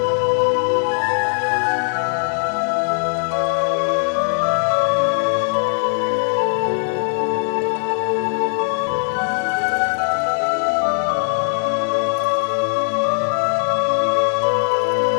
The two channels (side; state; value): right; silent; digital silence